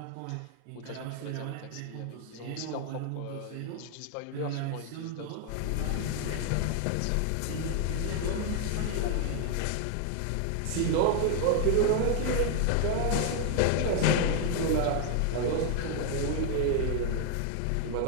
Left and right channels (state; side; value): different; both; correlation 0.00